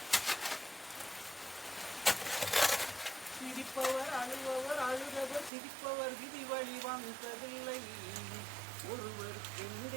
சிரிப்பவர் அழுபவர் அழுதவர் சிரிப்பவர் விதி வழி வந்ததில்லை.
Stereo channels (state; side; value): drops out; left; at 5.5 s